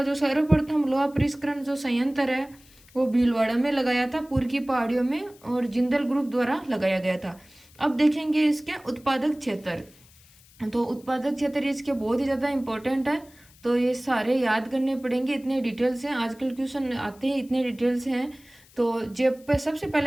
जो सर्वप्रथम लोहा परिष्करण जो संयंत्र है वो भीलवाड़ा में लगाया था, पूर्व की पहाड़ियों में, और जिंदल ग्रुप द्वारा लगाया गया था। अब देखेंगे इसके उत्पादक क्षेत्र। तो उत्पादक क्षेत्र इसके बहुत ही ज़्यादा इंपॉर्टेंट है। तो ये सारे याद करने पड़ेंगे, इतने डिटेल्स हैं, आजकल क्वेश्चन आते हैं, इतने डिटेल्स हैं। तो जयपुर सबसे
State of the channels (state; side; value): noise; left; hiss, 27 dB below the sound